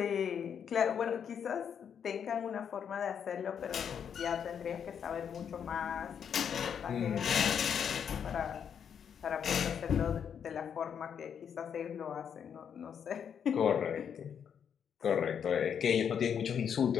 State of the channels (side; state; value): right; quieter; 7.9 dB